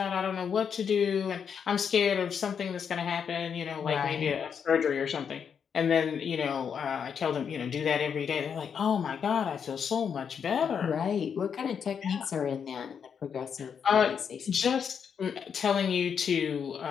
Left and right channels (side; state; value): right; quieter; 7.1 dB